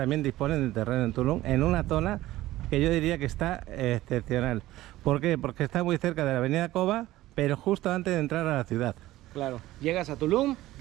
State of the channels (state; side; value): quieter; left; 16.2 dB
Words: disponen de terreno en Tulum, en una zona que yo diría que está excepcional. ¿Por qué? Porque está muy cerca de la avenida Cova, pero justo antes de entrar a la ciudad. Claro, llegas a Tulum,